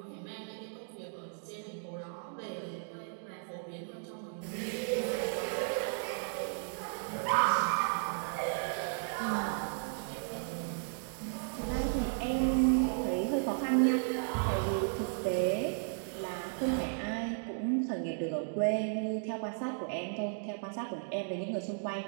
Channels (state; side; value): silent; left; digital silence